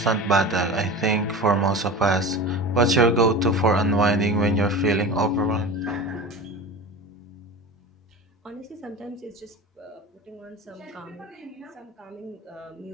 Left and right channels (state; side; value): normal; both; correlation 0.31